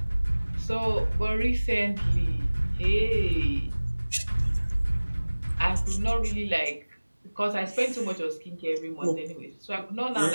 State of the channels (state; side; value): inverted; both; correlation -1.00